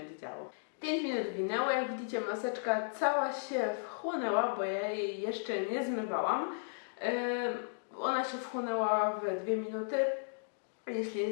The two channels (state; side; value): silent; right; digital silence